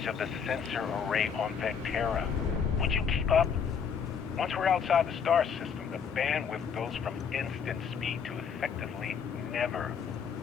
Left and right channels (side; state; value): right; quieter; 6.7 dB